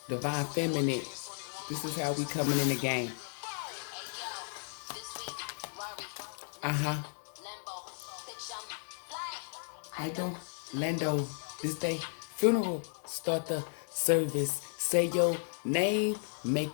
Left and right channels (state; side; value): silent; right; digital silence